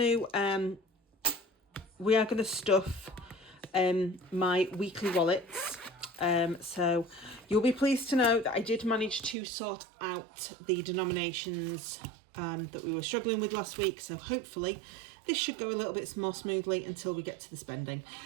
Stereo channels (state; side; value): drops out; left; at 9.3 s